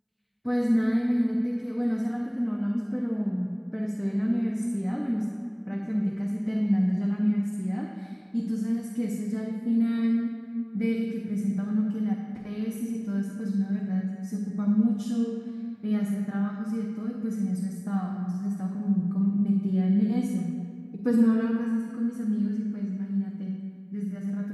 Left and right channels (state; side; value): identical; both; correlation 1.00